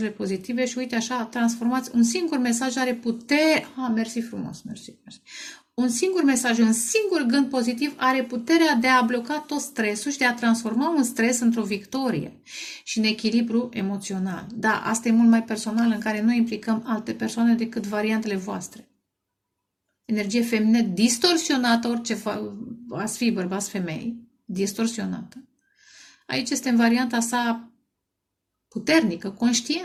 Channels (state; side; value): identical; both; correlation 1.00